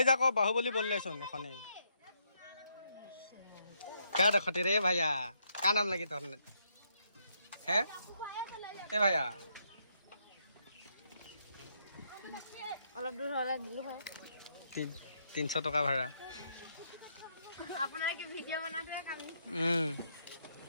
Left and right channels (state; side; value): inverted; both; correlation -0.75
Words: যাক বাহুবলী বললেচোন এখনেই क्या देखते रे भैया क्या नाम लगी तो है ए भैया অলপ দূৰ হ'লে দিলো হয় 300 টকা ভাড়া আপোনাৰ কি ভিডিঅ' বনাতে কাম